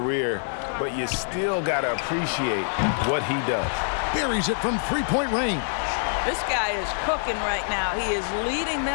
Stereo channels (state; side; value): silent; right; digital silence